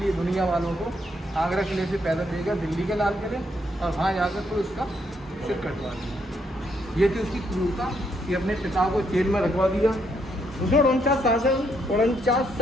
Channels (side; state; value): both; normal; correlation 0.74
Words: दुनिया वालों को आगरा किले से पैदल लेकर दिल्ली के लाल किले, और वहाँ जाकर फिर उसका सिर कटवा दिया। ये थी उसकी क्रूरता कि अपने पिता को जेल में रखवा दिया। उसने 49